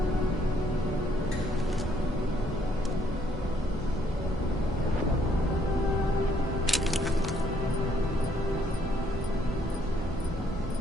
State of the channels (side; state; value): both; normal; correlation 0.68